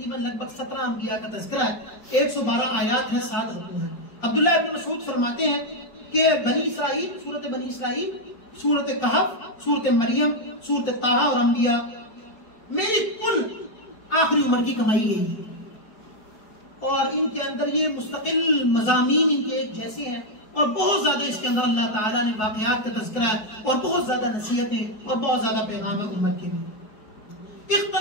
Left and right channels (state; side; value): late; right; 4.7 ms